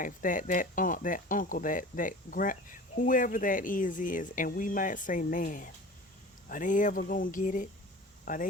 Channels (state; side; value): normal; both; correlation 0.38